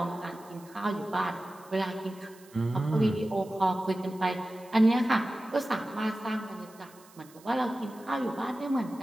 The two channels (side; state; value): right; noise; hiss, 25 dB below the sound